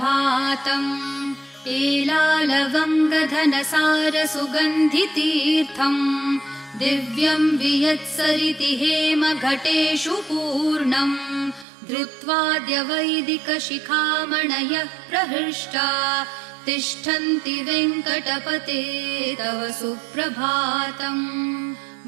एलालवङ्गधनसार सुगन्धितीर्थम् दिव्यं वियत्सरिति हेमघटेषु पूर्णम् धृत्वाद्य वैदिकशिखामणयः प्रहृष्टा तिष्ठन्ति वेङ्कटपते तव सुप्रभातम्।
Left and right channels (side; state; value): left; drops out; at 11.7 s